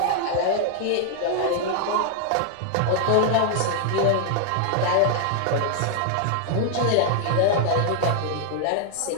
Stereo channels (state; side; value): different; both; correlation -0.01